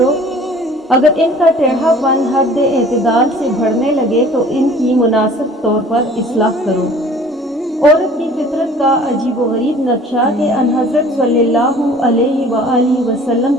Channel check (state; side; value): normal; both; correlation 0.49